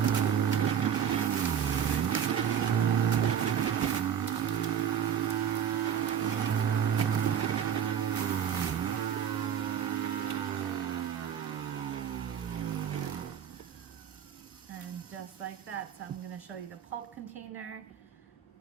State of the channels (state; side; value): quieter; left; 8.7 dB